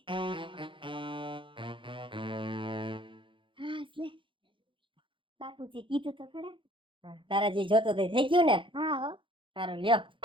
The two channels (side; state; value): left; late; 0.25 ms